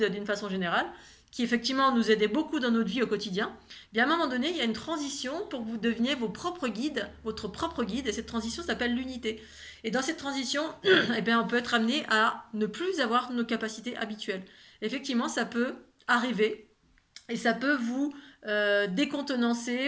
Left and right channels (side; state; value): both; identical; correlation 1.00